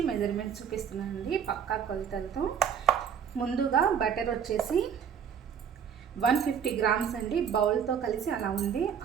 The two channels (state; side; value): quieter; left; 7.7 dB